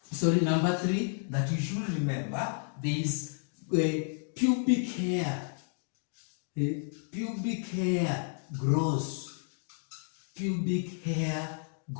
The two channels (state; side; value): silent; right; 57 dB below the other